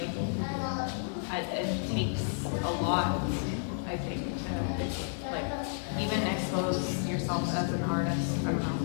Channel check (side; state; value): right; silent; digital silence